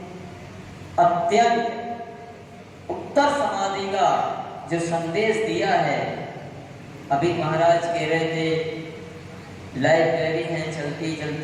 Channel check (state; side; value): identical; both; correlation 1.00